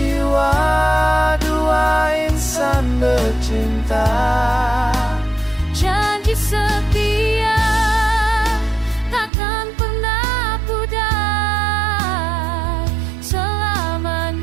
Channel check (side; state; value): left; drops out; at 9.3 s